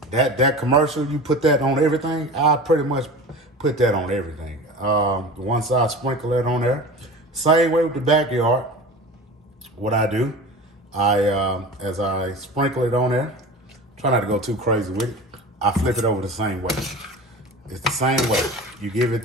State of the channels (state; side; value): normal; both; correlation 0.35